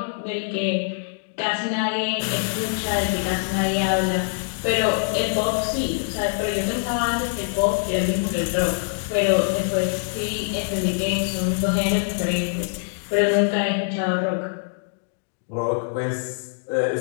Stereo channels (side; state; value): right; silent; digital silence